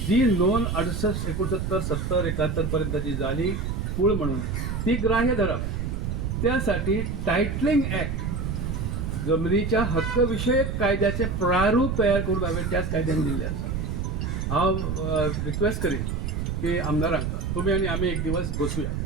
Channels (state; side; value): noise; right; rumble, 2 dB below the sound